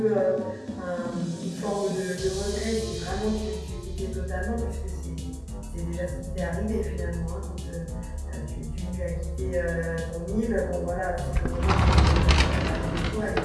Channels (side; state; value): both; identical; correlation 1.00